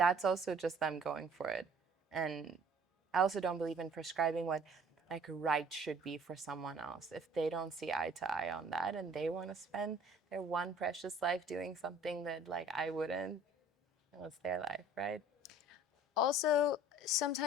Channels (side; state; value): both; normal; correlation 0.52